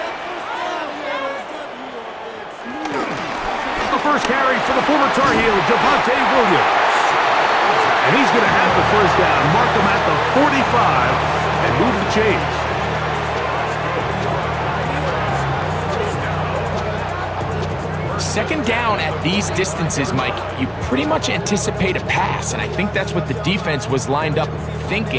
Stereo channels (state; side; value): identical; both; correlation 1.00